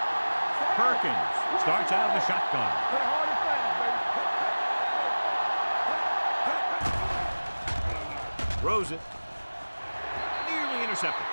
Perkins starts out of the shotgun. Play hard and fast, baby. Throws it. Nearly intercepted.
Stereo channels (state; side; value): inverted; both; correlation -1.00